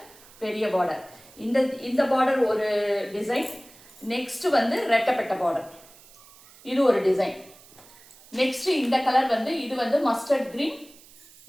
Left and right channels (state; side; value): noise; right; hiss, 23 dB below the sound